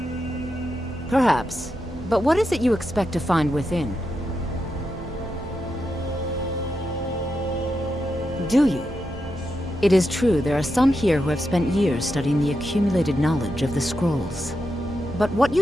Perhaps. But what is it you expect to find within? Do you? It is true there are some here who have spent years studying the accumulated knowledge of the scrolls. But what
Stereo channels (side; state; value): both; normal; correlation 0.86